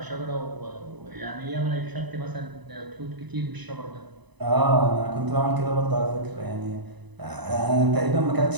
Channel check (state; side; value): late; left; 1.0 ms